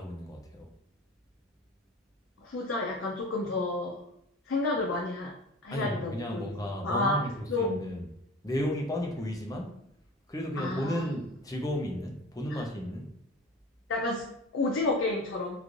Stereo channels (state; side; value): normal; both; correlation 0.36